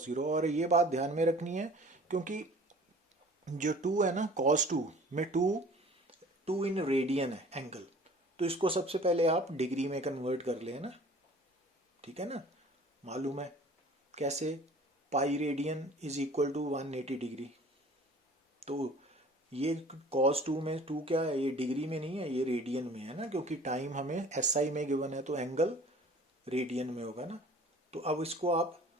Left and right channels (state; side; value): normal; both; correlation 0.48